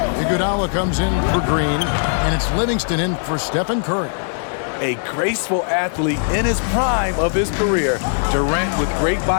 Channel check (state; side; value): silent; right; 63 dB below the other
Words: Iguodala comes in for Green. And it's Livingston in for Stephen Curry. A graceful athlete in his prime of his career. Durant with great